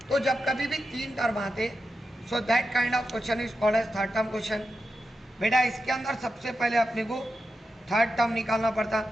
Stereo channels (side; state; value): both; normal; correlation 0.89